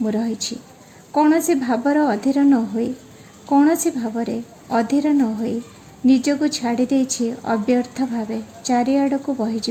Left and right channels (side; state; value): both; identical; correlation 1.00